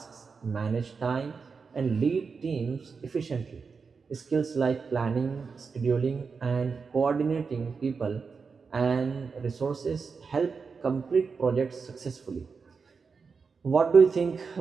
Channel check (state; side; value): quieter; left; 5.2 dB